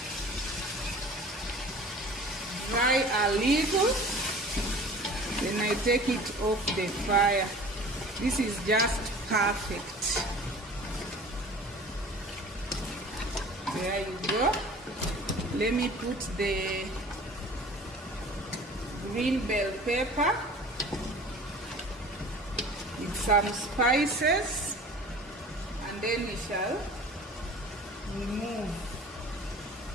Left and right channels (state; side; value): normal; both; correlation 0.43